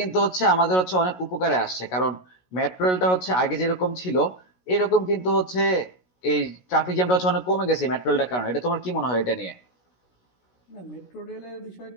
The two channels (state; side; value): late; right; 16 ms